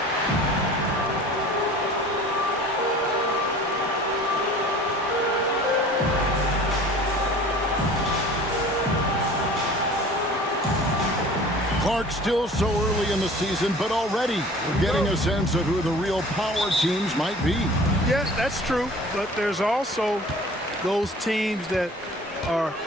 Clark, still so early in the season, but already we're getting a sense of who the real power teams might be. Yeah, that's true. But there's also those teams that are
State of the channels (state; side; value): normal; both; correlation 0.45